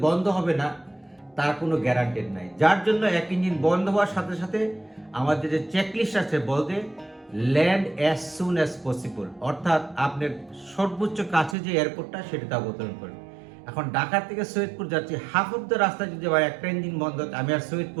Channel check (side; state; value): left; drops out; at 11.6 s